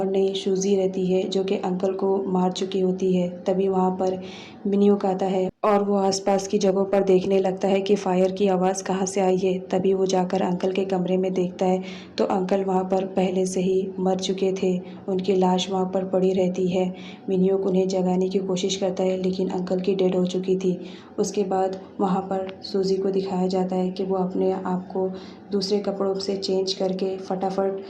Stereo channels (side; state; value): both; identical; correlation 1.00